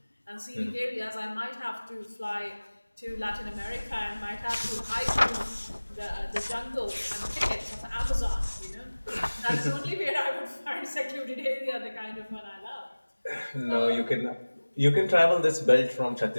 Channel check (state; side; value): inverted; both; correlation -1.00